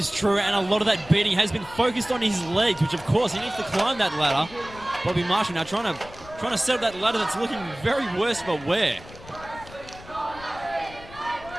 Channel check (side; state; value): left; noise; rumble, 18 dB below the sound